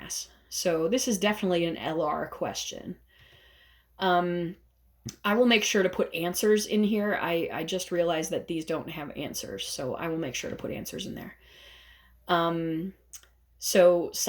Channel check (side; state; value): both; identical; correlation 1.00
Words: So this is definitely an LR question. I will make sure to put answers in here. I just realized that these don't have answers, so I will make sure to put answers in there. So